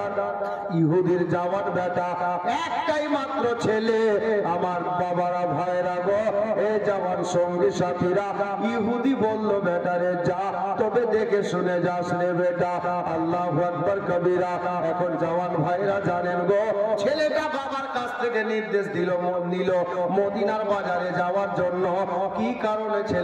ইহুদির জওয়ান বেটা, একটাই মাত্র ছেলে। আমার বাবারা ভাইরা গো, এ জওয়ান সঙ্গী সাথীরা, ইহুদি বলল, বেটারে যা, তবে দেখে শুনে যাস রে বেটা। আল্লাহু আকবার কবিরা। এখন জওয়ান ভাইরা জানেন গো, ছেলেটা বাবার কাছ থেকে নির্দেশ নিল মদিনার বাজারে যাওয়ার জন্য। কি কারণে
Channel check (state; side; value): identical; both; correlation 1.00